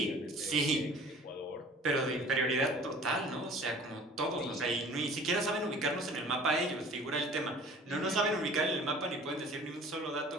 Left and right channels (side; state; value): both; normal; correlation 0.48